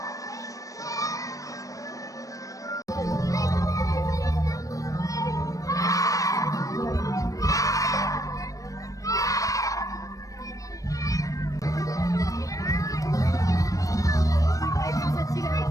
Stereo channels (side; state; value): right; late; 0.16 ms